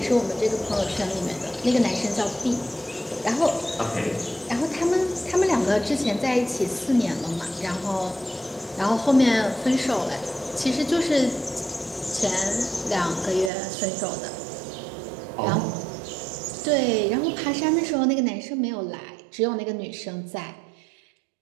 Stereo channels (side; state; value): left; drops out; at 13.5 s